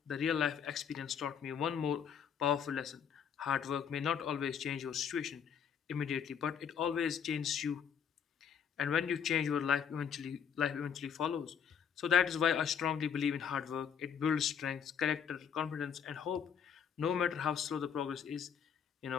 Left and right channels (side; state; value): right; quieter; 7.7 dB